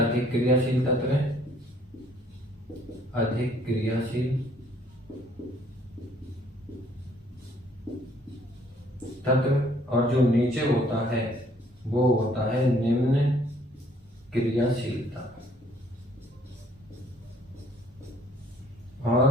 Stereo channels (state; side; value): normal; both; correlation 0.61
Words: क्रियाशील तत्व हैं, अधिक क्रियाशील तत्व, और जो नीचे होता है वो होता है निम्न क्रियाशीलता।